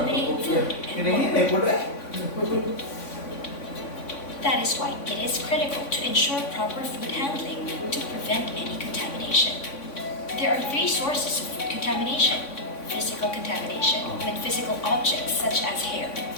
food and water. That is why it is critical to ensure proper food handling to prevent any contamination. There are three sources of food contamination: physical contamination, when physical objects such as hair,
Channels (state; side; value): late; right; 3.5 ms